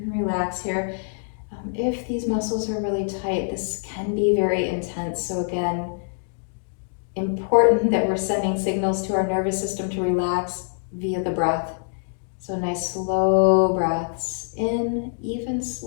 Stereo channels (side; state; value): right; silent; digital silence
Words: can relax here. If these muscles are really tight, this can be very intense. So again, important that we're sending signals to our nervous system to relax via the breath. So nice slow breaths in, even